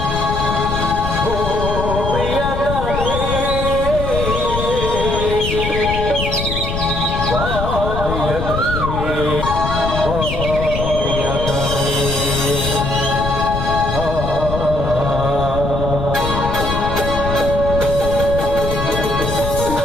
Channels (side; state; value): left; noise; rumble, 3 dB below the sound